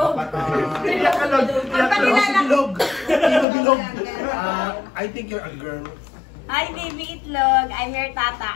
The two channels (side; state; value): right; drops out; at 3.5 s